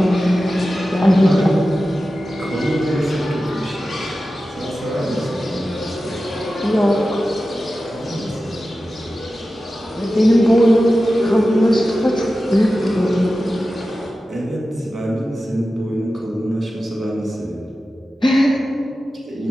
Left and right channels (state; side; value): normal; both; correlation 0.94